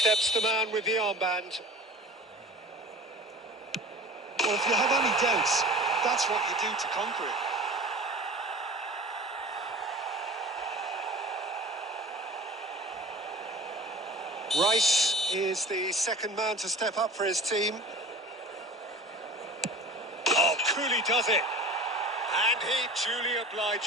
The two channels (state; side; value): normal; both; correlation 0.40